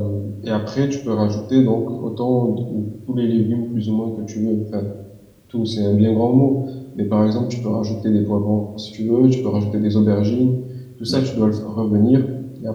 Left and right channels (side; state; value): both; identical; correlation 1.00